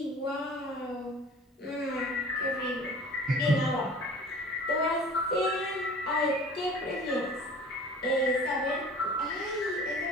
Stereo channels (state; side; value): normal; both; correlation 0.44